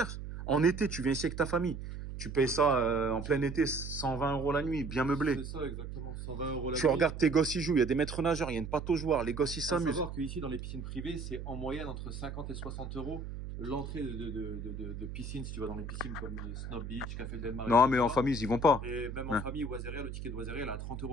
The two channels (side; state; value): right; noise; hum, 8 dB below the sound